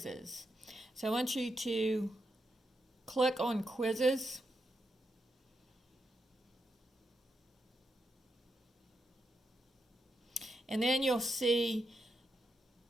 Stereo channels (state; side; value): normal; both; correlation 0.84